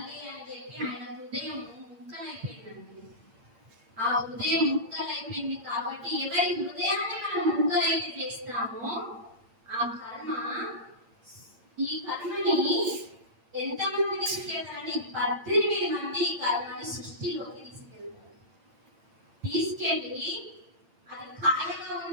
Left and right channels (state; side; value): late; left; 8.7 ms